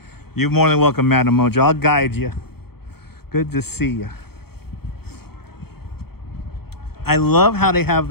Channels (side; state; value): right; late; 0.95 ms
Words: You're more than welcome, Madam Mojo. I'll guide you. Good to see you. I love how they have